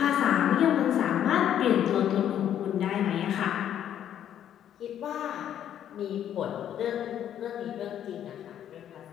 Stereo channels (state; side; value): quieter; right; 10.3 dB